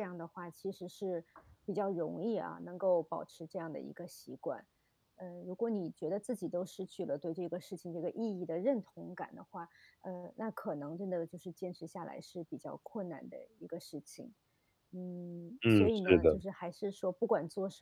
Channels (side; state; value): both; identical; correlation 1.00